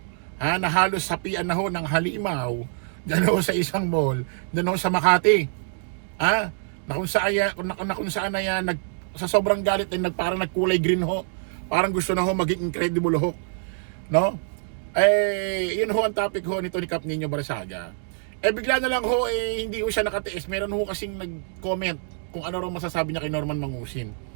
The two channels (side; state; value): left; silent; 58 dB below the other